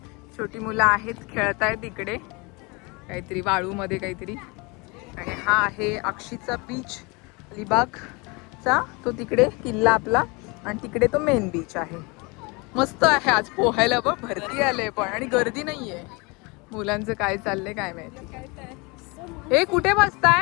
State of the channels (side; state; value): right; quieter; 28.0 dB